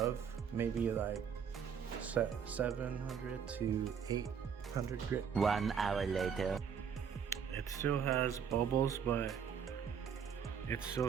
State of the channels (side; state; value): left; quieter; 7.3 dB